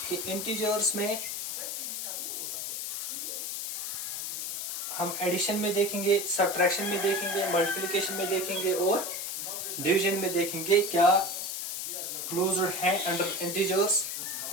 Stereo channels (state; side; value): noise; left; hiss, 4 dB below the sound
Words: कि इंटीजर्स में हम एडिशन में देखेंगे, सब्ट्रैक्शन में देखेंगे, मल्टीप्लिकेशन में देखेंगे और डिवीजन में देखेंगे क्या क्लोज्ड है अंडर इंटीजर्स